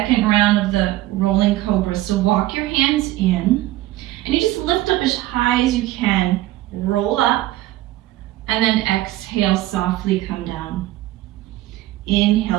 round of the rolling cobra. So walk your hands in. And you just lift up as high as you can. Roll up. And then exhale, softly come down.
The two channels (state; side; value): quieter; left; 16.1 dB